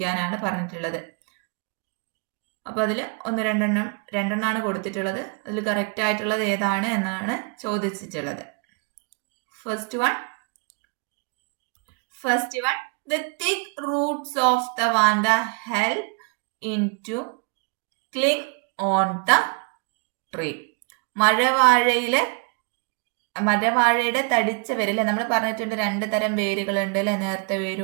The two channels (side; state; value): left; quieter; 34.4 dB